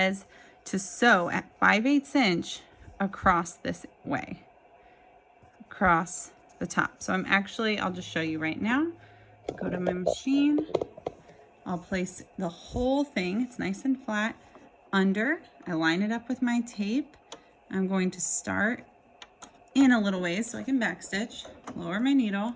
to sew at 5/8 inch across this way, across the top. So I'll just show you right now. Go to my machine. I'll place the whole thing, it's nice and flat, under. I line it up with my tape. I'm going to start in a little ways so I can backstitch. Lower my needle,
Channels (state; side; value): identical; both; correlation 1.00